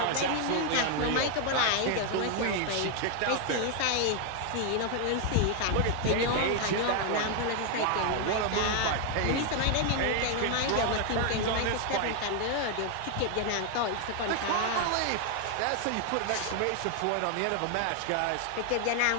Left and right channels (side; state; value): both; different; correlation 0.00